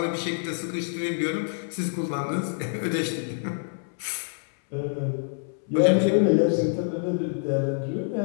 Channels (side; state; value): right; silent; 61 dB below the other